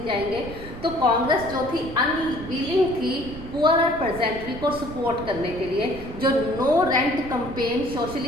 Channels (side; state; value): right; noise; rumble, 12 dB below the sound